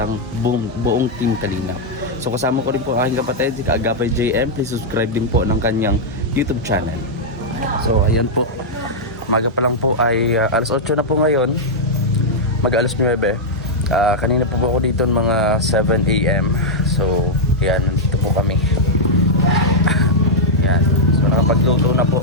ang buong team Kalingap. So kasama ko rin po ang aking kapatid, si Kaagapay JM. Please subscribe din po ng kanyang YouTube channel. So ayan po. Umaga pa lang po ay alas 8 na po ngayon. Mag-alas 9. Kanina po ako dito mga 7 AM. So yan, nandito po kami. Yan. So nakapagluto na po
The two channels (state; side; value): normal; both; correlation -0.04